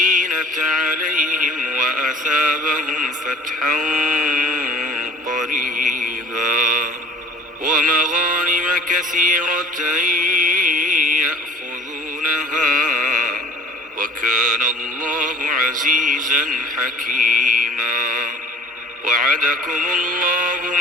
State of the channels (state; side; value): normal; both; correlation 0.46